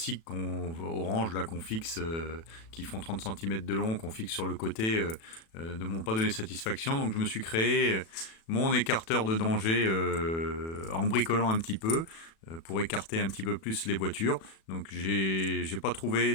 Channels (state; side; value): late; right; 36 ms